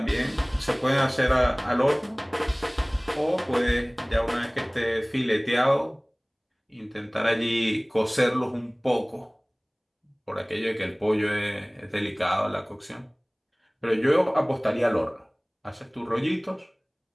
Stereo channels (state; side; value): identical; both; correlation 1.00